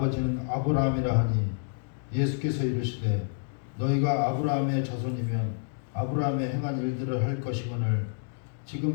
아브라함이라 하니 예수께서 이르시되 너희가 아브라함의 자손이면 아브라함의 행한 일들을 할 것이거늘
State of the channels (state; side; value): silent; right; digital silence